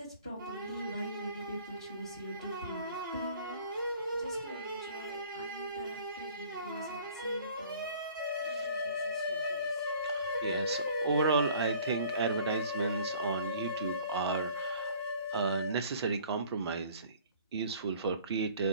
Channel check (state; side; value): inverted; both; correlation -0.52